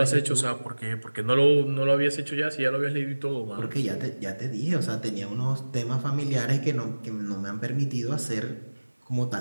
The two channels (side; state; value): both; inverted; correlation -1.00